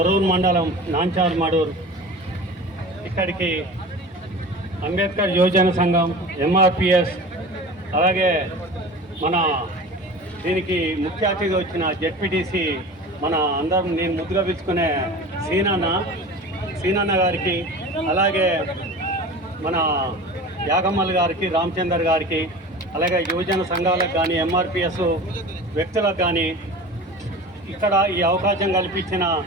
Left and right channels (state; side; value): normal; both; correlation 0.36